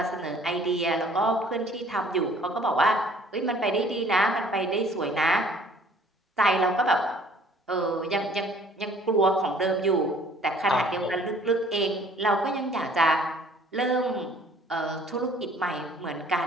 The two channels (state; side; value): normal; both; correlation 0.55